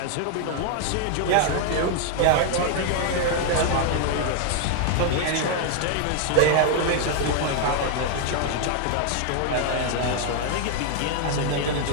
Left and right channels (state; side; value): different; both; correlation 0.00